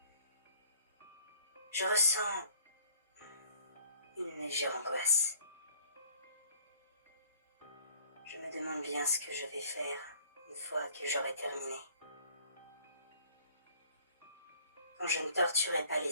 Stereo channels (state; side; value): inverted; both; correlation -0.55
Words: je ressens une légère angoisse. Je me demande bien ce que je vais faire une fois que j'aurai terminé. Quand je ne torturais pas